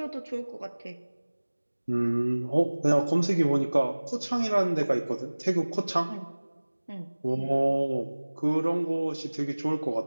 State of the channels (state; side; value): inverted; both; correlation -1.00